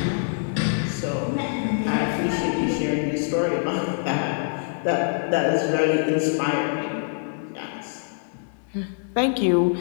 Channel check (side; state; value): right; silent; 62 dB below the other